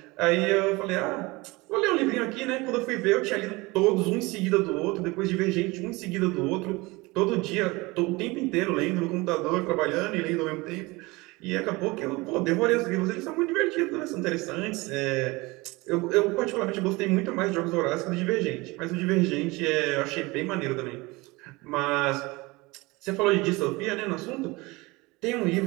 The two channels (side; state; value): left; quieter; 23.3 dB